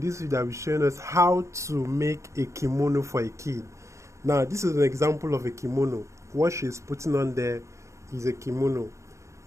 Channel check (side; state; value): left; late; 0.14 ms